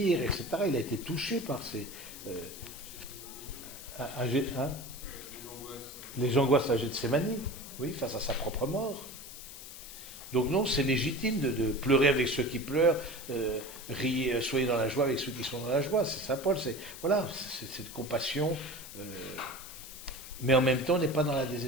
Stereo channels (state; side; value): noise; left; hiss, 13 dB below the sound